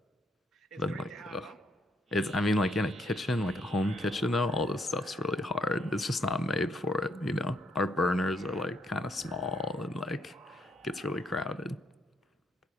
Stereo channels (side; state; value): both; normal; correlation 0.72